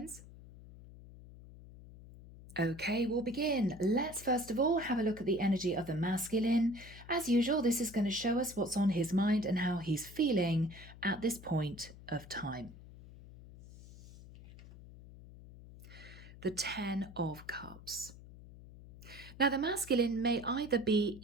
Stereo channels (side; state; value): left; noise; hum, 18 dB below the sound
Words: Okay, we'll begin. Let's first of all have a look at the energy of the masculine. As usual, this is going to show us what's on his mind and how he's feeling at this point of time. The 10 of Cups. Now, the masculine may either be